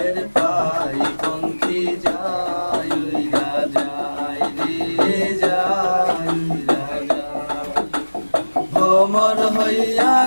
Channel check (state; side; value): inverted; both; correlation -1.00